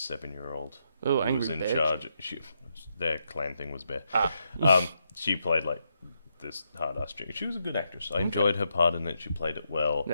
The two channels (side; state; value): both; inverted; correlation -0.81